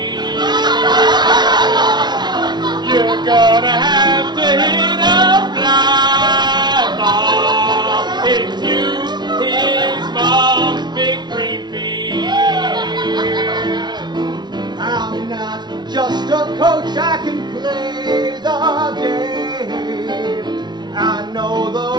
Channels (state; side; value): late; left; 0.20 ms